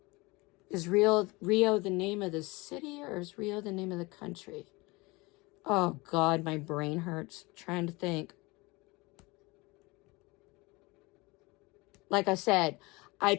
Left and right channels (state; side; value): quieter; right; 24.3 dB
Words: Is Rio the name of the city, or is Rio the name of the country? Oh, God, my brain hurts trying to think. Like I said, I